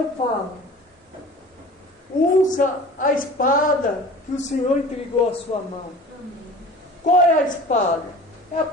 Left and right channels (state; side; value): normal; both; correlation 0.41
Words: falo: usa a espada que o Senhor entregou à sua mão. Qual é a espada? É a